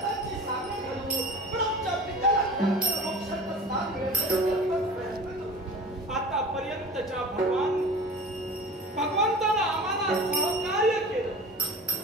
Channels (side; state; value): both; normal; correlation 0.38